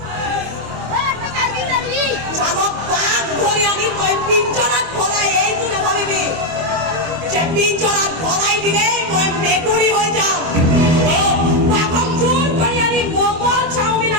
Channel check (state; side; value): late; left; 25 ms